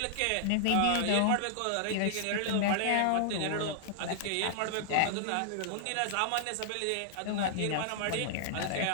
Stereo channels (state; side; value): different; both; correlation -0.01